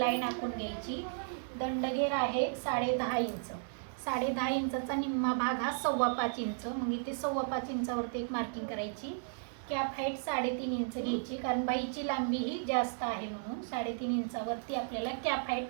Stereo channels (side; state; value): left; silent; digital silence